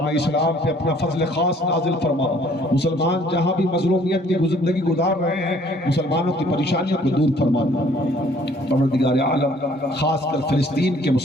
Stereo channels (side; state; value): both; normal; correlation 0.59